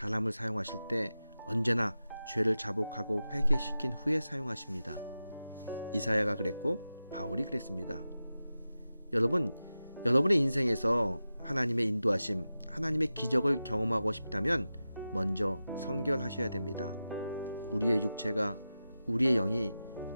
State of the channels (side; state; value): both; inverted; correlation -0.93